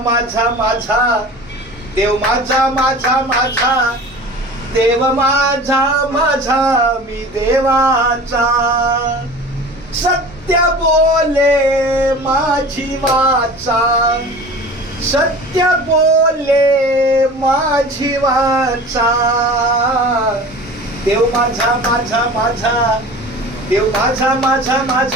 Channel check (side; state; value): both; normal; correlation 0.39